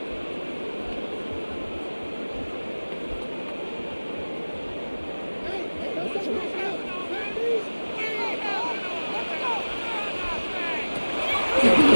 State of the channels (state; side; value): inverted; both; correlation -1.00